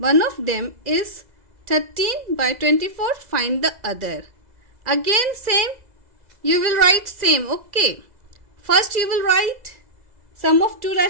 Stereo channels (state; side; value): late; left; 2.0 ms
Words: of them is 13 by 24, find the other. Again same, you will write same. Okay, first you will write sum of two